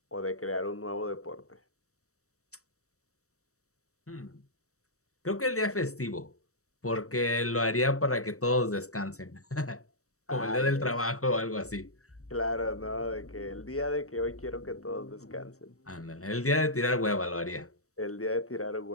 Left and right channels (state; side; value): late; right; 0.65 ms